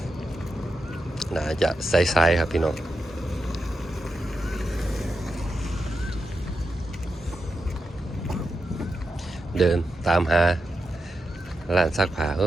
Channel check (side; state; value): both; normal; correlation 0.87